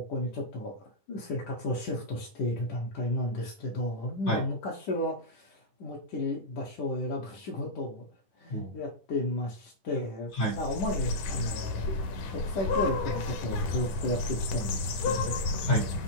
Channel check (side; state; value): right; late; 11 ms